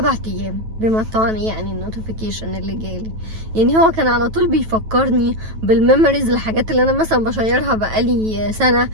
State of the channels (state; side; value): late; left; 9.2 ms